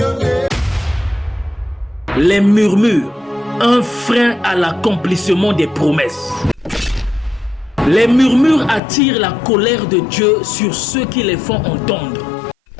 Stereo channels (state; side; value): drops out; right; at 8.8 s